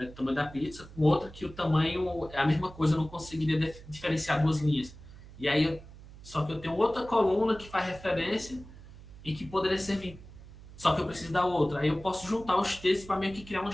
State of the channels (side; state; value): right; noise; hum, 18 dB below the sound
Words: o tamanho da pizza com outra, que o tamanho é a mesma coisa, eu não conseguiria diferenciar duas linhas. E aí, só que eu tenho outra coluna que faz referência e que poderia servir, só que eu preciso da outra. Aí eu posso juntar os textos para meio que criar uma